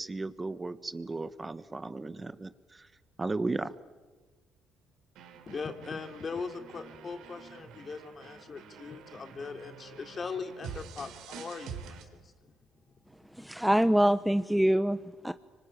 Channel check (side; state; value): both; normal; correlation 0.96